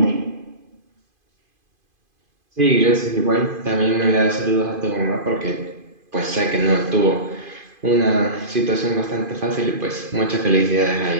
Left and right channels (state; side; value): late; left; 2.5 ms